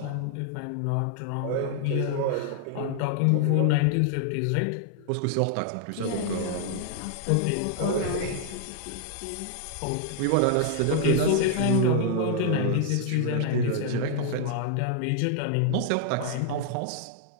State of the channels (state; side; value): different; both; correlation 0.00